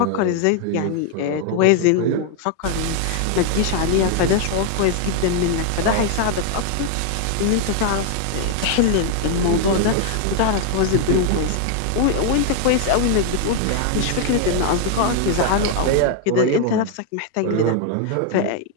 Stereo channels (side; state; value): both; different; correlation 0.00